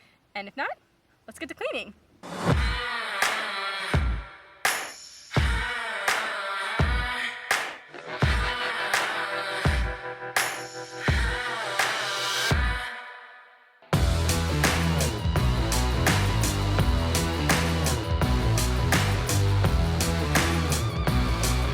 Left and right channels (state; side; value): identical; both; correlation 1.00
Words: And if not, let's get to cleaning.